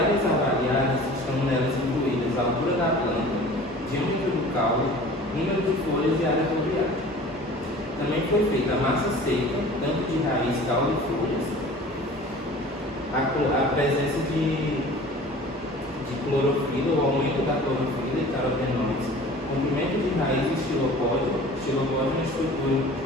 avaliadas estão nelas incluídas a altura da planta, diâmetro do caule, número de folhas e área foliar. Também foi feita a massa seca, tanto de raiz, caule e folhas, a presença de clorofila, o aumento da clorofila e carotenoides, comprimento de raiz e xilopódio. Xilopódio é uma estrutura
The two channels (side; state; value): both; normal; correlation 0.43